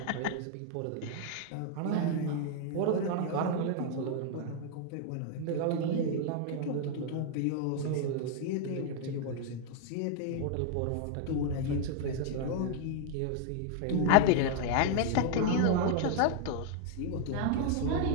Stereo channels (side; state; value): both; different; correlation 0.00